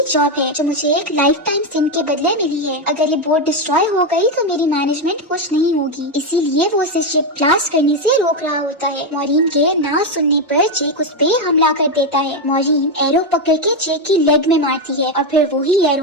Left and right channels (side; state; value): both; normal; correlation 0.07